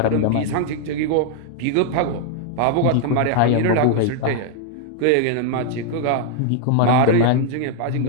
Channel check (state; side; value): different; both; correlation 0.00